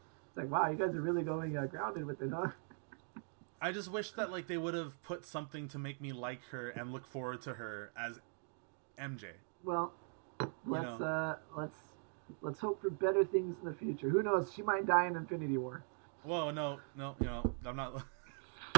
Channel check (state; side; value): silent; left; 50 dB below the other